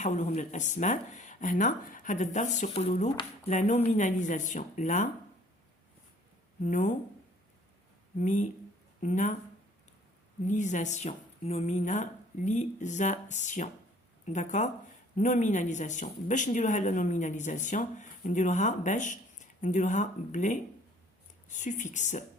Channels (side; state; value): both; normal; correlation 0.56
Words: للاسماء؟ هنا هذا الدرس يقولوا له لا نوميناليزاسيون. لا nominalisation. D'accord? Nominalisation. باش نديروها لا nominalisation نديروها باش نديروها بلي suffix.